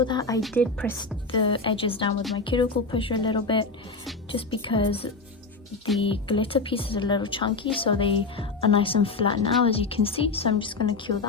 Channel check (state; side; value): quieter; right; 3.9 dB